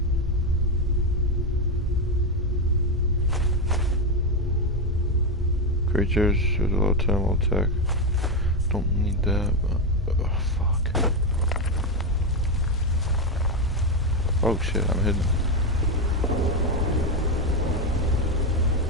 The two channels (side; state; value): both; normal; correlation 0.08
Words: Creatures with a low time will attack. Don't need that, but fuck. Oh shit, I'm hidden.